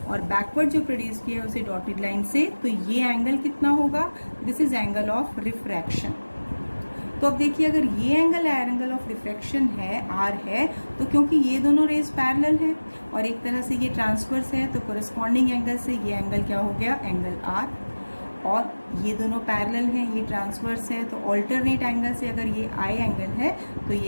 और बैकवर्ड जो प्रोड्यूस किया है उसे डॉटेड लाइन से. तो ये एंगल कितना होगा? This is angle of refraction. तो अब देखिए, अगर ये एंगल ऑफ रिफ्रैक्शन है, R है, तो क्योंकि ये दोनों रेज पैरेलल है और एक तरह से ये ट्रांसवर्स है, तो कोरेस्पॉन्डिंग एंगल से ये एंगल क्या हो गया? Angle R. और ये दोनों पैरेलल हैं, ये ट्रांसवर्स है, तो ऑल्टरनेट एंगल से अगर ये I एंगल है तो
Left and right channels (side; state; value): both; inverted; correlation -1.00